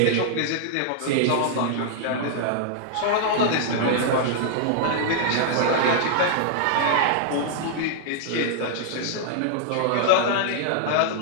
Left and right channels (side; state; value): both; different; correlation -0.01